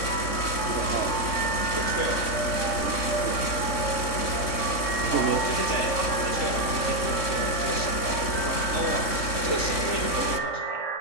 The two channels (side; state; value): right; late; 3.6 ms